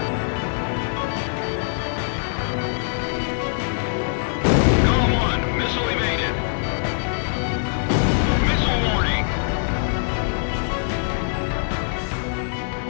GOM 1, missile evaded. Missile warning.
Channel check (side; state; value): right; silent; digital silence